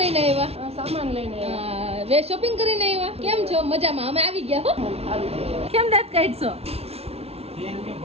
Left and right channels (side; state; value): left; late; 0.30 ms